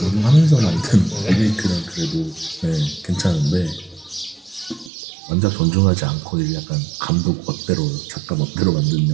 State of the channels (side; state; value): left; drops out; at 4.9 s